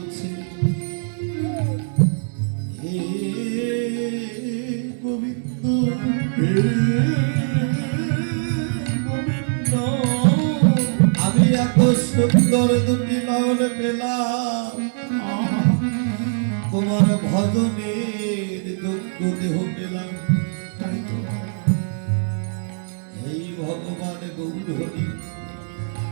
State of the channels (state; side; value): silent; left; 64 dB below the other